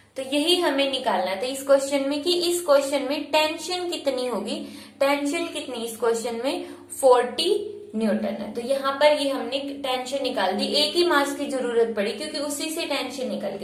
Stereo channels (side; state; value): both; identical; correlation 1.00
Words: तो यही हमें निकालना था इस क्वेश्चन में कि इस क्वेश्चन में टेंशन कितनी होगी, टेंशन कितनी इस क्वेश्चन में 40 न्यूटन है। तो यहाँ पर ये हमने टेंशन निकाल दी, एक ही मास की जरूरत पड़ी क्योंकि उसी से टेंशन निकल